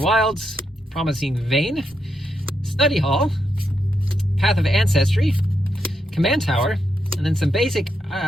Promising Vein, Study Hall, Path of Ancestry, Command Tower, and then some basic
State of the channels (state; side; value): normal; both; correlation 0.82